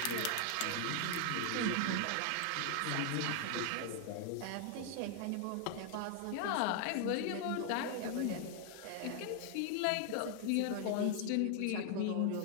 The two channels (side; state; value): both; different; correlation 0.00